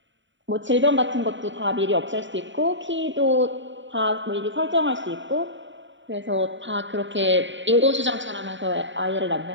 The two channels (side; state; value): left; late; 0.54 ms